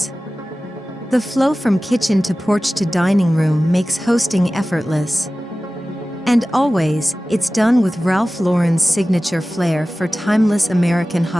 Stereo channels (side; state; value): both; normal; correlation 0.96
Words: The flow from kitchen to porch to dining room makes hosting effortless. And always, it's done with Ralph Lauren's signature flair for timeless American